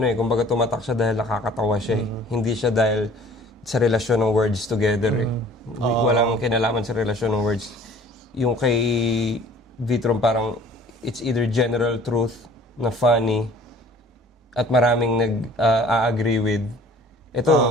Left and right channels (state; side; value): normal; both; correlation 0.51